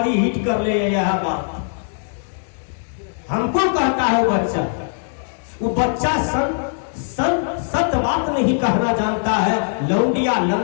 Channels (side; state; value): right; silent; digital silence